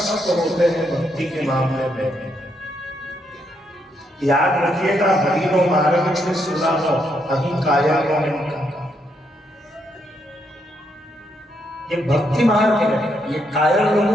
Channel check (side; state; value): both; normal; correlation 0.77